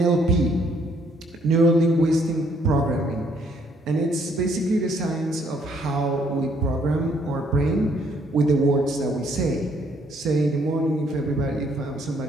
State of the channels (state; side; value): normal; both; correlation 0.67